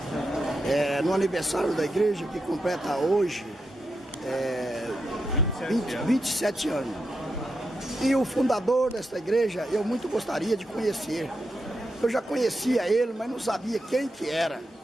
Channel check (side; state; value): both; normal; correlation 0.86